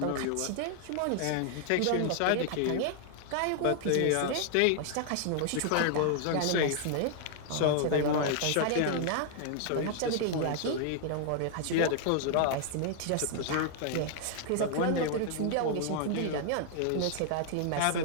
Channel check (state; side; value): different; both; correlation 0.00